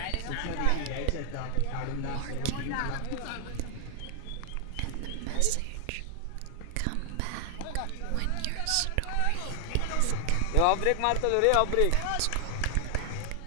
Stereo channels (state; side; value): different; both; correlation 0.00